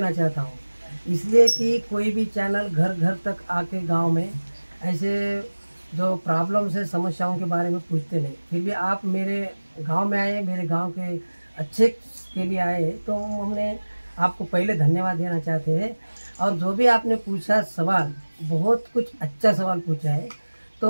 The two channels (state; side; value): inverted; both; correlation -1.00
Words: चाहता हूँ, इसलिए कि कोई भी चैनल घर घर तक आके गांव में ऐसे जो प्रॉब्लम्स है, समस्याओं के बारे में पूछते नहीं, फिर भी आप मेरे गांव में आए, मेरे गांव के अच्छे के लिए आए, तो हमने आपको पहले धन्यवाद देना चाहते हैं। और जो भी आपने पूछा सवाल, बहुत कुछ अच्छा सवाल पूछा है।